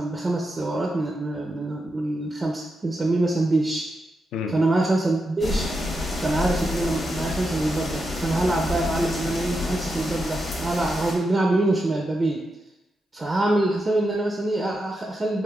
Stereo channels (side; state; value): both; normal; correlation 0.86